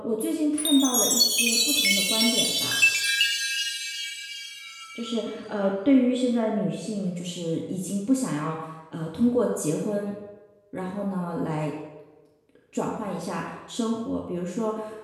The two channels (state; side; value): identical; both; correlation 1.00